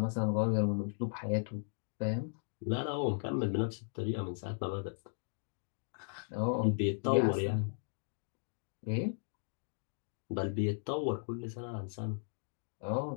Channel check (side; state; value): right; silent; digital silence